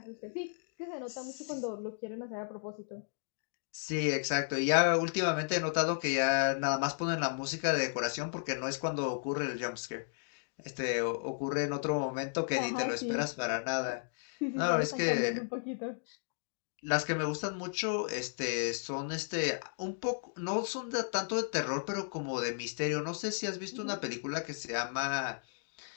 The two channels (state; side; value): silent; right; digital silence